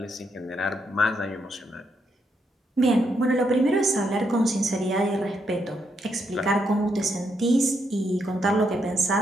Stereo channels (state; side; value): normal; both; correlation 0.78